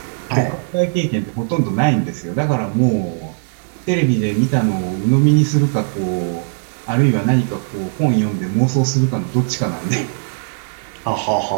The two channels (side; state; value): left; silent; 57 dB below the other